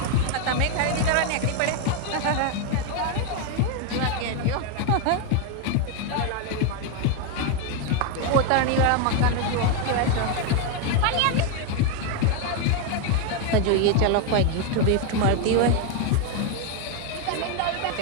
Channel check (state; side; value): different; both; correlation 0.01